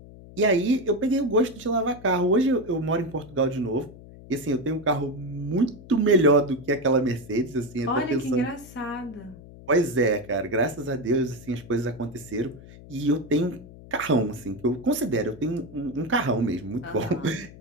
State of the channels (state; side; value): noise; left; hum, 18 dB below the sound